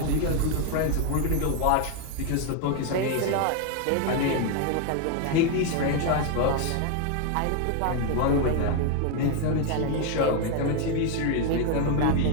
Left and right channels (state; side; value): different; both; correlation 0.01